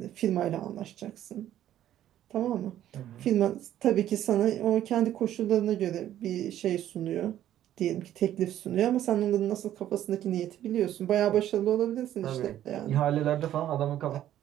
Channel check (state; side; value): quieter; left; 12.0 dB